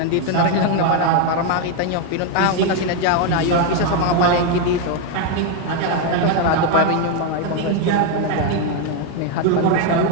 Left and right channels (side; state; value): both; different; correlation 0.01